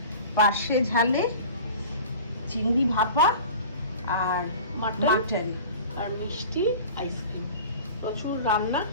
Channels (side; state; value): both; inverted; correlation -0.39